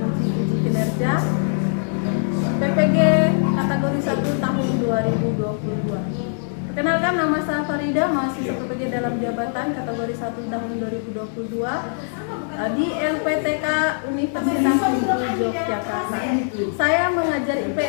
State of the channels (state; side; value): silent; right; digital silence